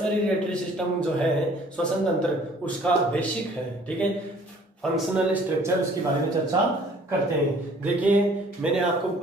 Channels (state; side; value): normal; both; correlation 0.55